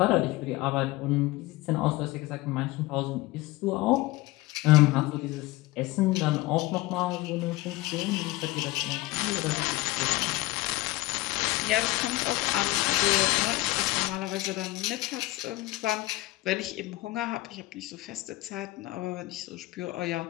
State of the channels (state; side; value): quieter; right; 19.6 dB